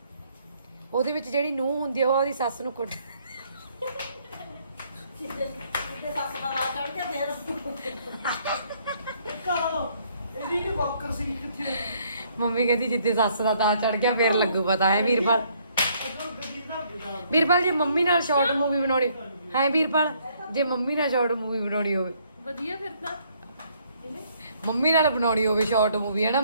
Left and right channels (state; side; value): inverted; both; correlation -0.67